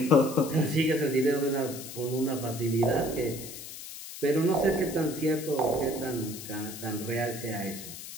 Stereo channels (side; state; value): left; noise; hiss, 11 dB below the sound